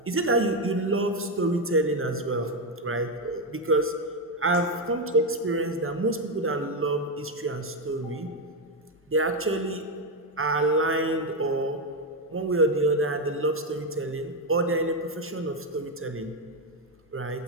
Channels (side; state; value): both; normal; correlation 0.07